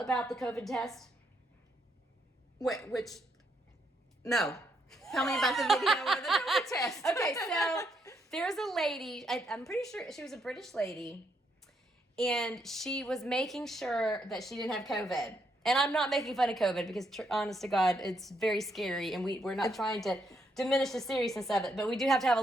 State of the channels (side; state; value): both; normal; correlation 0.76